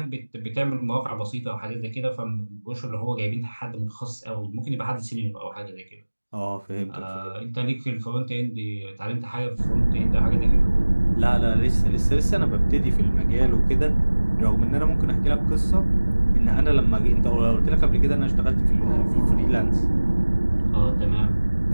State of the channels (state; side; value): inverted; both; correlation -1.00